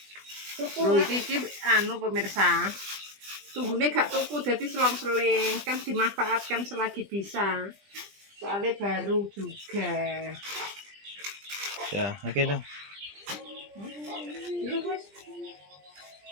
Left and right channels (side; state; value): left; late; 20 ms